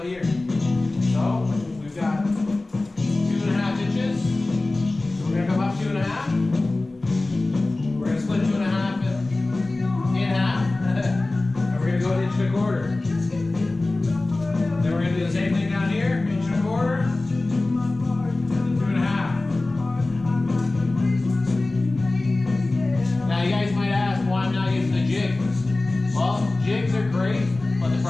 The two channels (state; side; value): quieter; right; 3.0 dB